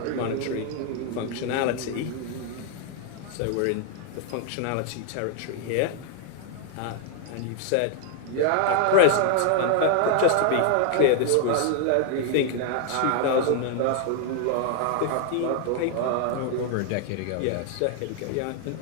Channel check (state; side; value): different; both; correlation 0.00